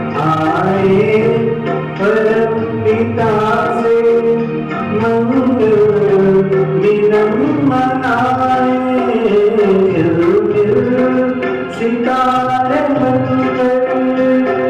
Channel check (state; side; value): identical; both; correlation 1.00